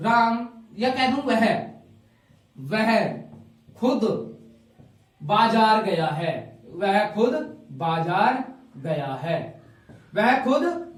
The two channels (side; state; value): both; identical; correlation 1.00